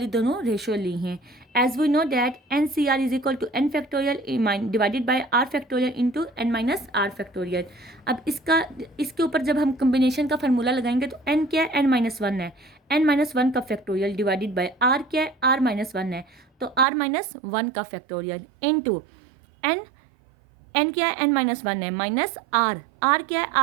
दोनों रेशो ली हैं। As we know that NCR is equal to n factorial divided by r factorial into n minus r factorial. अब इसके ऊपर जब हम कम्बिनेशन का फार्मूला लगाएंगे तो n क्या है, n-1 है, n-1 का फैक्टोरियल डिवाइडेड बाय r क्या है, r-1 है, तो r-1 का फैक्टोरियल इंटू n क्या है, n-1 है, माइनस r क्या है,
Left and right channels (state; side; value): drops out; left; at 16.9 s